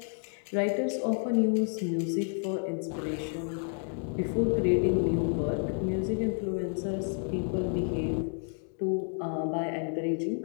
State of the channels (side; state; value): right; silent; 55 dB below the other